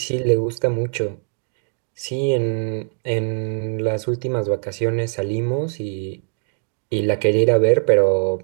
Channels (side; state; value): left; silent; digital silence